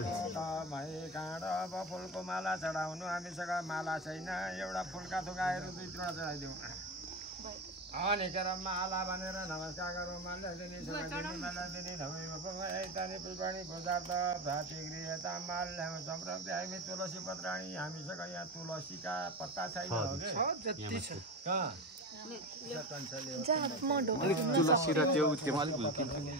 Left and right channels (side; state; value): both; normal; correlation 0.22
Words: अब फुलको माला चढाउनु हामीसँग माला छैन एउटा फुलका थुकाहरू 2-3 चढाइदिउँ अनि केरा माला भनेर नमस्कार गरौँ माला दिने माला दिने धमै पुष्पाणी पदार्थ भातृगृहता माल ल्याउँ सम्प्रति हामी तुलसी पत्राणी हामीसँग यहाँ तुलसीका पत्ता छैन